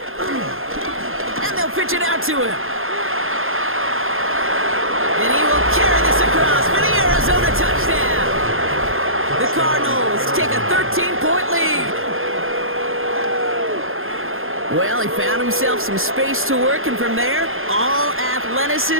And they'll pitch it out to him. And he will carry this across for the Arizona touchdown. The Cardinals take a 13-point lead. Well, he found himself some space to work, and from there, all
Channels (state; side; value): late; left; 0.60 ms